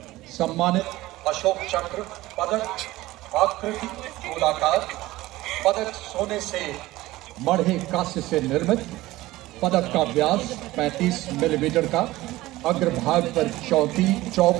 सम्मानित अशोक चक्र पदक आकृति गोलाकार पदक सोने से मढ़े कांस्य से निर्मित, पदक का व्यास 35 मिलीमीटर का, अग्रभाग पर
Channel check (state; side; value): quieter; left; 17.8 dB